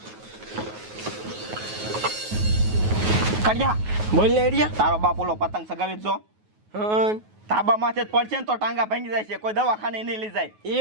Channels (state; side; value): late; left; 9.4 ms